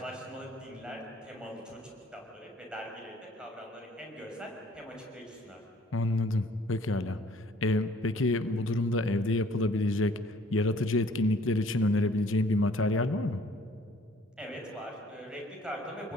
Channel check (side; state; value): both; normal; correlation 0.56